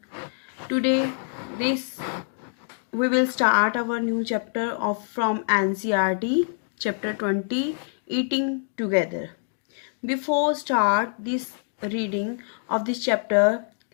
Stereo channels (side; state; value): right; silent; digital silence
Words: Today we will start our new chapter from NCERT, chapter 20, Eating Together. Before start this reading of this chapter,